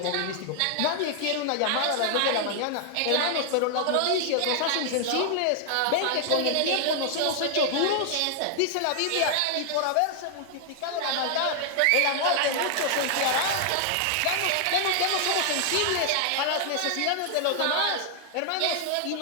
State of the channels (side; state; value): both; different; correlation 0.00